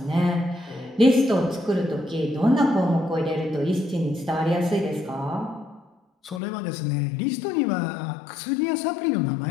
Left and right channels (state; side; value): drops out; right; at 6.4 s